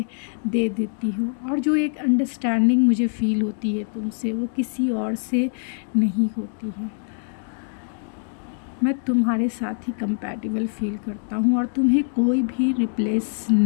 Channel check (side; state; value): right; silent; digital silence